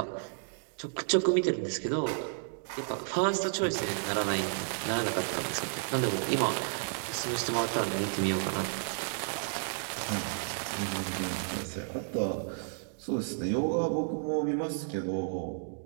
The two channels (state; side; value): silent; left; digital silence